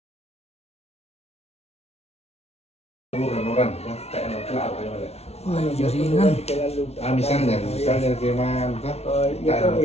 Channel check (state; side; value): late; right; 0.31 ms